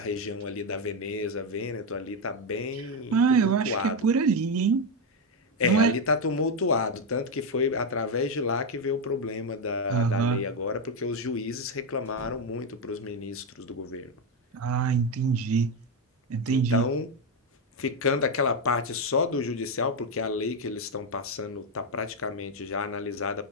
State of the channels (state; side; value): normal; both; correlation 0.07